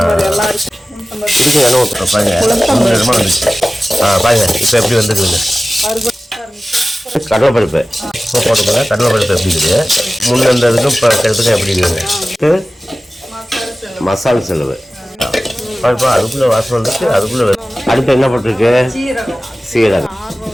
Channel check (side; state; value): both; normal; correlation 0.96